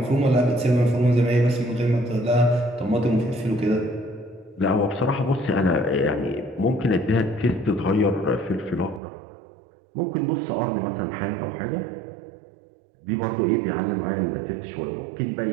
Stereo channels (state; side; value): drops out; left; at 9.0 s